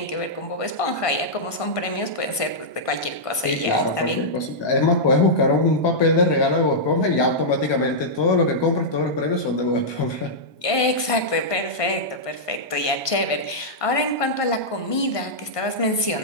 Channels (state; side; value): late; right; 1.5 ms